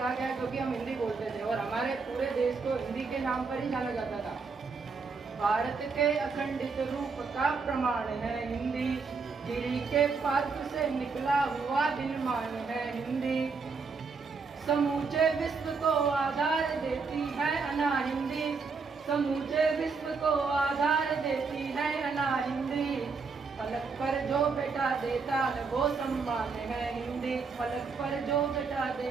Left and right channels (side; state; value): left; quieter; 4.8 dB